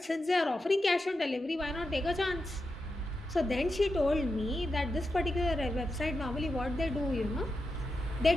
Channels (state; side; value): normal; both; correlation 0.89